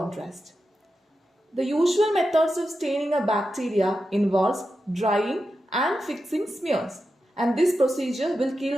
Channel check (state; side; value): normal; both; correlation 0.90